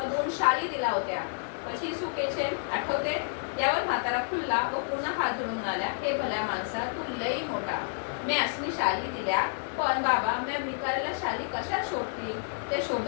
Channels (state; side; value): silent; right; digital silence